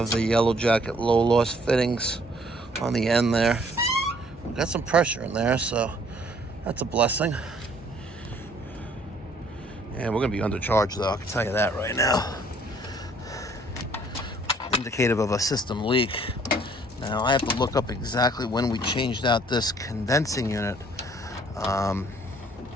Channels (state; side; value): normal; both; correlation 0.60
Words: the Yellow Jacket low loss fittings on the end there. We've got some pressure in there, so that's a blessing. And we're gonna be undercharged though, I can tell you that right now. Indicative of a system leak. Now I have to look up exactly when we changed out this condensing unit.